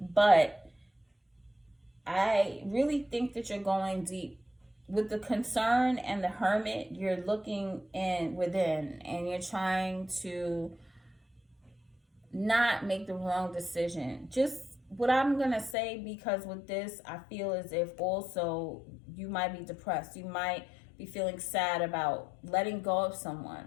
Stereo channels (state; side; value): drops out; right; at 15.8 s